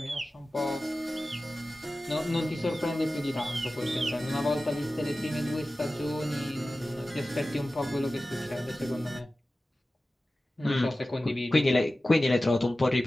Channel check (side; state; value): both; normal; correlation 0.95